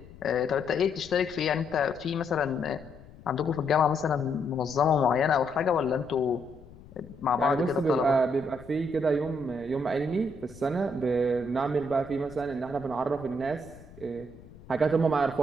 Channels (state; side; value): noise; left; rumble, 20 dB below the sound